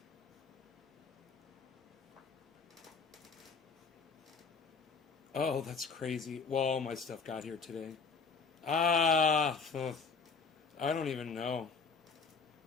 Oh, that's crazy. Well, all my stuff got here today. I don't even know.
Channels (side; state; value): right; quieter; 4.9 dB